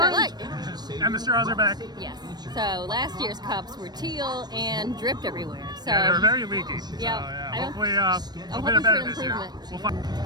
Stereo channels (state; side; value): late; left; 0.20 ms